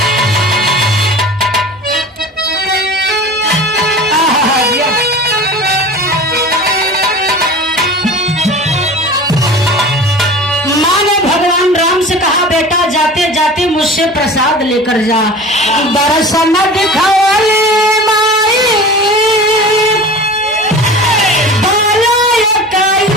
बेटा जाते जाते मुझसे प्रसाद लेकर जा। दर्शन दिखाओ माई,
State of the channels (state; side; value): normal; both; correlation 0.37